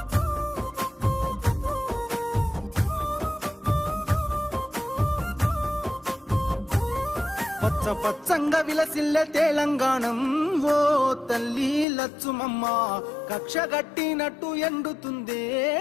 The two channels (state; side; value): drops out; right; at 11.9 s